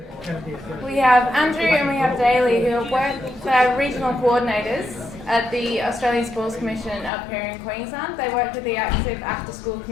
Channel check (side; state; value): right; drops out; at 7.1 s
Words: We have Andrew and we have Daly, who are regional coordinators at the Australian Sports Commission up here in Queensland. They work with the active after-school